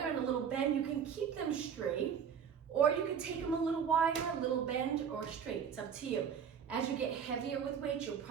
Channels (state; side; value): quieter; left; 7.5 dB